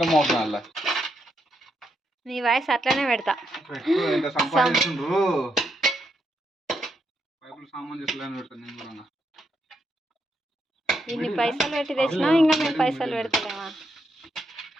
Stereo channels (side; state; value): both; normal; correlation 0.80